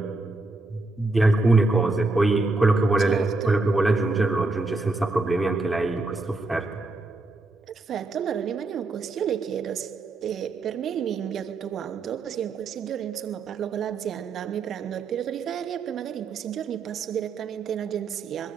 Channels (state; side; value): quieter; left; 3.3 dB